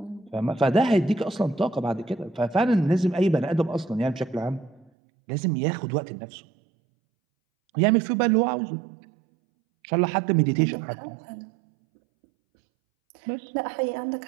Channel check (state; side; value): drops out; left; at 4.9 s